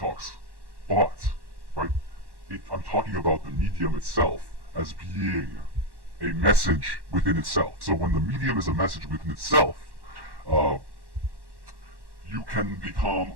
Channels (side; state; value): left; late; 1.1 ms